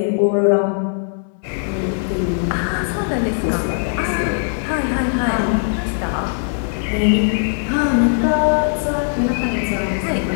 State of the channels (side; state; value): right; silent; digital silence